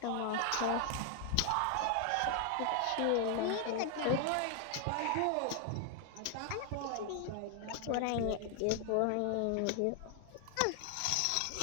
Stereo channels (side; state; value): both; different; correlation 0.00